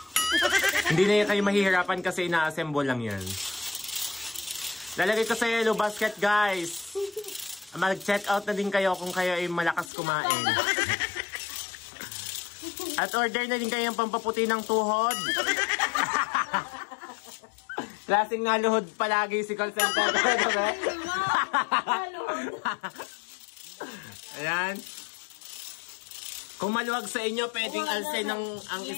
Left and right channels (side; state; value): right; drops out; at 9.9 s